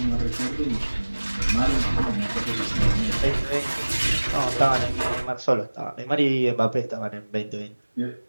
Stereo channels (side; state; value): both; inverted; correlation -1.00